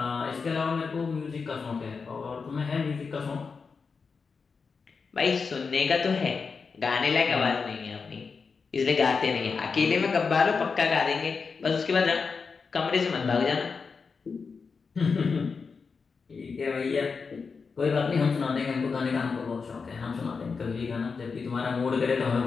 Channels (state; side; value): quieter; right; 5.1 dB